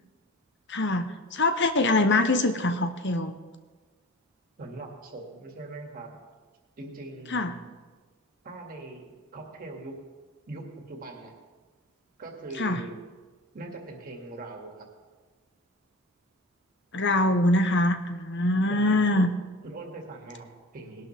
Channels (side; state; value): both; normal; correlation 0.39